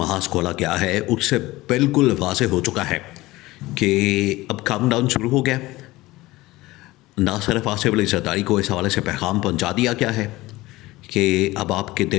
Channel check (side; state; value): right; quieter; 19.2 dB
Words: खोला गया है उससे बिल्कुल वाज़ेह हो चुका है कि अब काउंटडाउन शुरू हो गया। ना सिर्फ आसिफ अली जरदारी को इस हवाले से पैगाम पहुंचा दिया गया है कि अब आपके